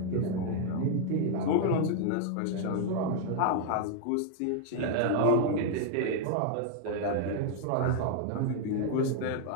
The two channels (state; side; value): different; both; correlation -0.01